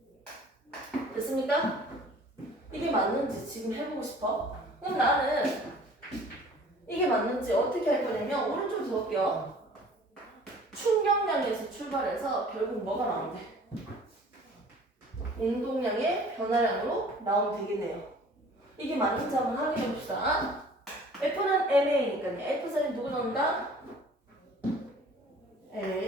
됐습니까? 이게 맞는지 지금 해보고 싶어? 그럼 나는 이게 맞는지 어떻게 할 거냐면 오른쪽으로 적을게요. 충격량이 변화량에서 출발해서 결국 뭐가 나오는데? 운동량의 변화량으로 나오면 되겠네요. 이게 맞는지 한번 확인해 봅시다. F는 MA니까요. F 자리에 누구 넣는다?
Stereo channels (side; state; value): both; normal; correlation 0.49